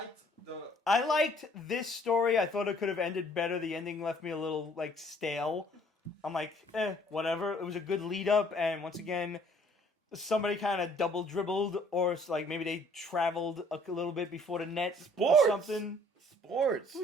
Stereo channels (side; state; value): both; normal; correlation 0.59